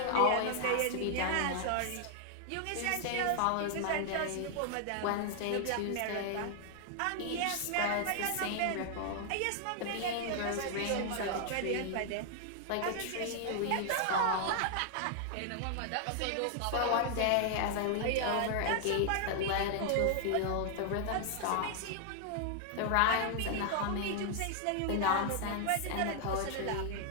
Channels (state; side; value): different; both; correlation 0.00